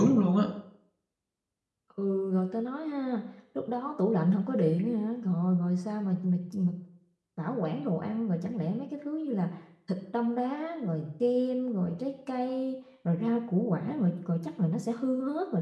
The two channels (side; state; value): both; identical; correlation 1.00